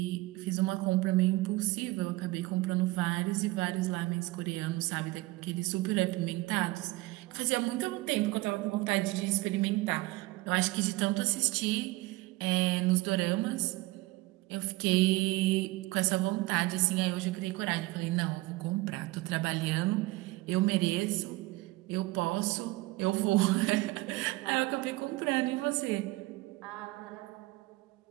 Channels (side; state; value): left; quieter; 20.4 dB